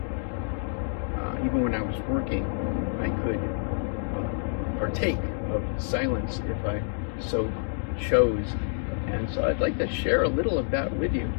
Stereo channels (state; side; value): silent; right; digital silence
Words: even when I was working, I could partake of silence if I so chose. And so I'd like to share a little of that with you.